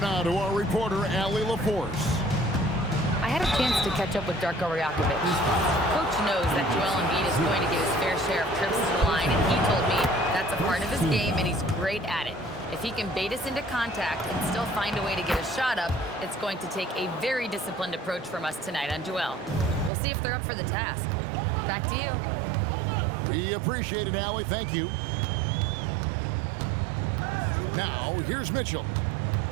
to our reporter, Allie LaForce. I had a chance to catch up with Darko Rajakovic. Coach knows that Joel Embiid is going to get his fair share of trips to the line, and he told me that's a part of his game, and he's great at it. If he can bait us into contact and still find a way to get a shot up, it's going to take a very disciplined approach from us tonight on Joel. We'll see if they're up for the task. Back to you. We appreciate it, Allie. Thank you. Now, here's Mitchell.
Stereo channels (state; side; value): drops out; left; at 19.9 s